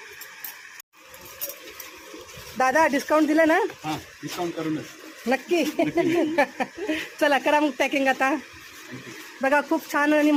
दादा डिस्काउंट दिलं ना? हां, डिस्काउंट करूनच. नक्की. चला करा मग पॅकिंग आता. बघा खूप छान आणि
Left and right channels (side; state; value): both; identical; correlation 1.00